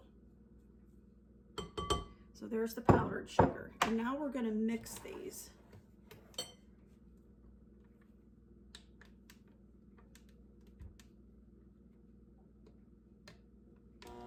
So there's the powdered sugar. And now we're going to mix these.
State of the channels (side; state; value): both; identical; correlation 1.00